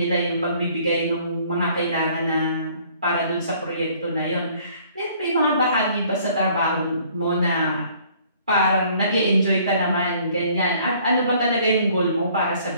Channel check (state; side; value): inverted; both; correlation -0.58